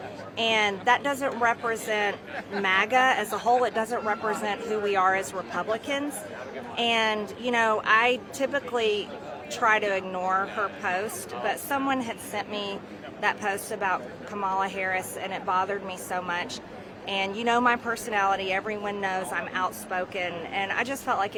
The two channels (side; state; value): both; identical; correlation 1.00